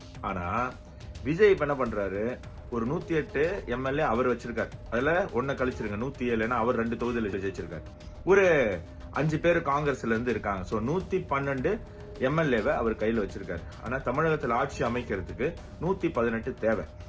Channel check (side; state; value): both; identical; correlation 1.00